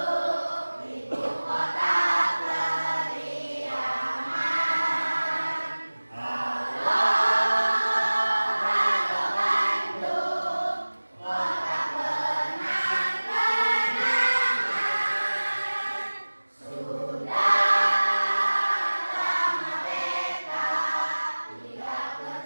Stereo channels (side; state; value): both; inverted; correlation -1.00